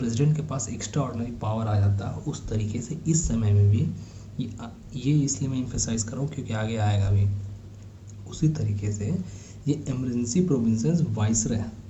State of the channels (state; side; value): identical; both; correlation 1.00